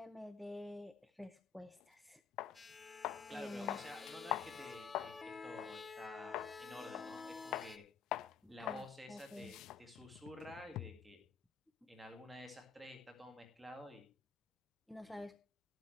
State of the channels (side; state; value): right; quieter; 6.3 dB